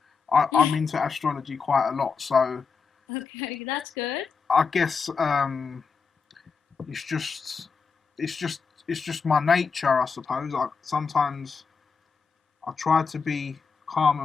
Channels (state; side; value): quieter; right; 5.3 dB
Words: I'm into astrology quite a lot, so Okay, that's good. I guess it's just it's just it's just my nature, I suppose. Sometimes I try to be calm